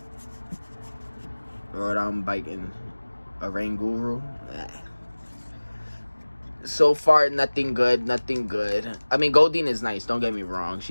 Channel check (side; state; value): both; inverted; correlation -1.00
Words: Lord, I'm biting a Rain Guru. So far, nothing good. I mean, Goldeen is nice, don't get me wrong.